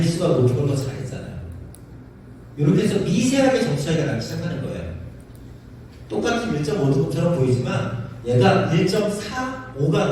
높은 걸 더 잘했잖아요. 이렇게 해서 미세하게 점수 차이가 나기 시작하는 거예요. 똑같은 1.5등급처럼 보이지만 얘가 1.45가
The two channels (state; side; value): identical; both; correlation 1.00